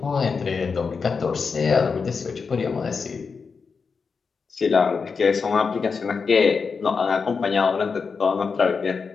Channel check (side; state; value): right; quieter; 5.2 dB